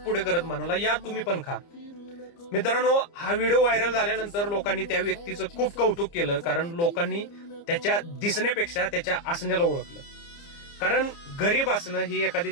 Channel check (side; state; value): right; late; 29 ms